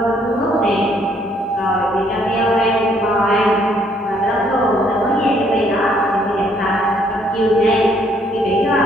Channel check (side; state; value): both; normal; correlation 0.66